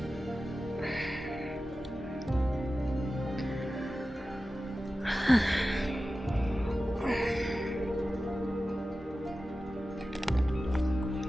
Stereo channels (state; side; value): normal; both; correlation 0.94